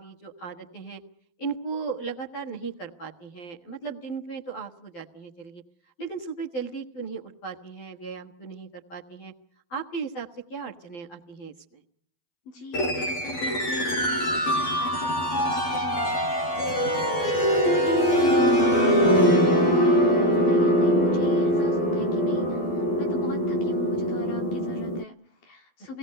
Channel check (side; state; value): right; late; 12 ms